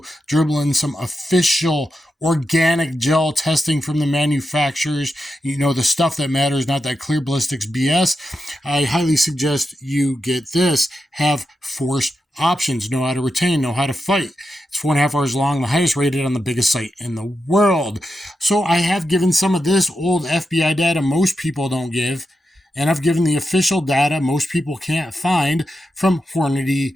dribble in some official organic gel testing from the manufacturers. You know, the stuff that matters, not that clear ballistics BS. I highly suggest you get this. Have force options, know how to retain, know how to fight. It's 4.5 hours long, the highest rated on the biggest site in the world. So I have given some of this old FBI data most people don't give, and I've given the official data most people can't find from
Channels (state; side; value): normal; both; correlation 0.87